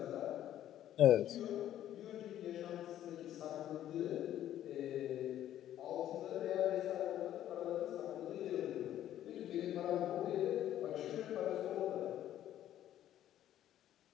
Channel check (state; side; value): quieter; right; 11.9 dB